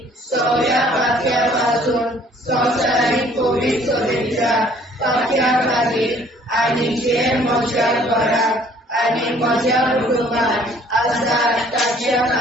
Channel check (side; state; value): both; normal; correlation 0.58